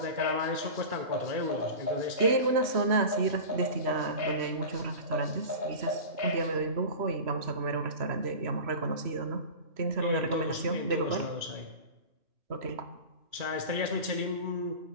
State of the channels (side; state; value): left; late; 3.1 ms